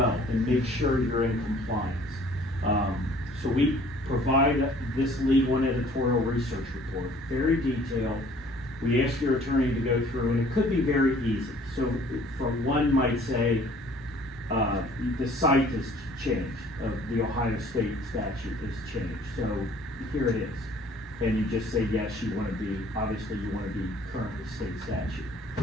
and make sure you're in compliance. So we provide this legal and editorial research report, very detailed. We ask your attorney to go through, and it could be very easy. So for one might say, the site has changed, the Ohio state statute has changed. So here it is. And you just say, yes, you want to be, obviously you want to be current with state statute.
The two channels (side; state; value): both; normal; correlation 0.54